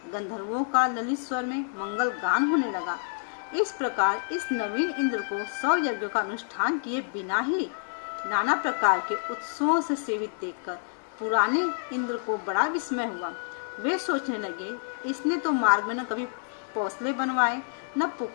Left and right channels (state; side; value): silent; right; 59 dB below the other